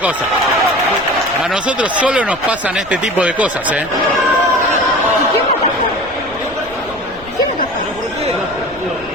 cosa. A nosotros solo nos pasan este tipo de cosas, ¿eh? ¿Quién me atajó?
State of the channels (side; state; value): left; noise; rumble, 20 dB below the sound